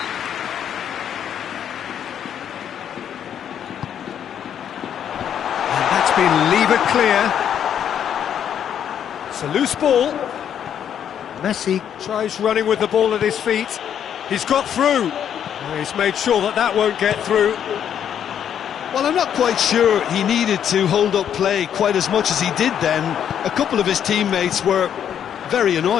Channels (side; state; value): right; quieter; 9.1 dB